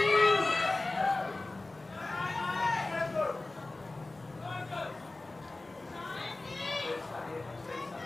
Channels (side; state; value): right; quieter; 3.0 dB